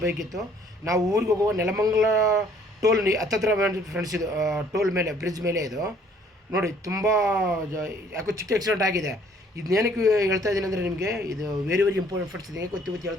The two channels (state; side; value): normal; both; correlation 0.60